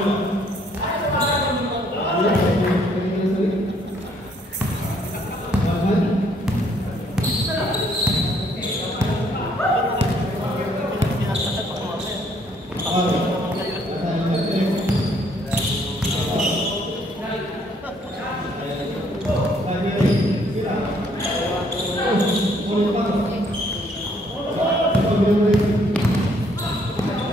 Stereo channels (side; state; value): both; normal; correlation 0.66